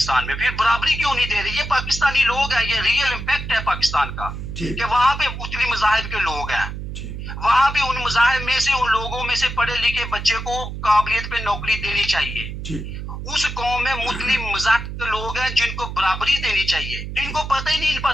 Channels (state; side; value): noise; right; hum, 7 dB below the sound